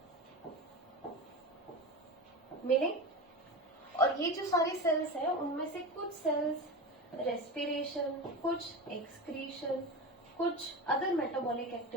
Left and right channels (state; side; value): normal; both; correlation 0.26